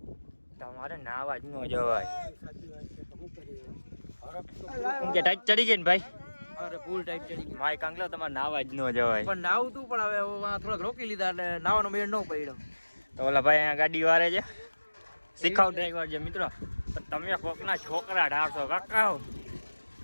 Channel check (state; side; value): inverted; both; correlation -1.00